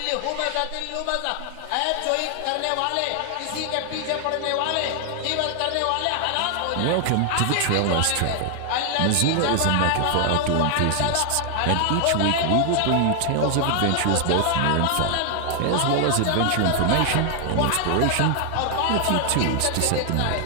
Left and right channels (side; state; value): both; different; correlation 0.00